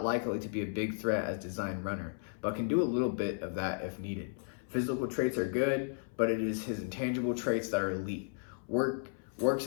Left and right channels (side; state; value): right; silent; 55 dB below the other